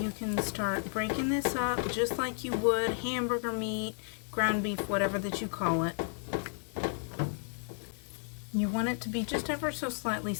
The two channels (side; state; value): right; silent; 56 dB below the other